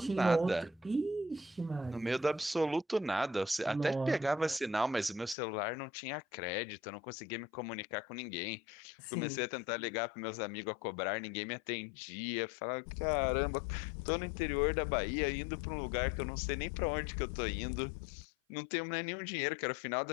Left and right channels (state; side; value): drops out; right; at 5.4 s